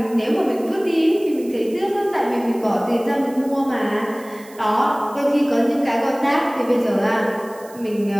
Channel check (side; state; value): right; noise; hiss, 23 dB below the sound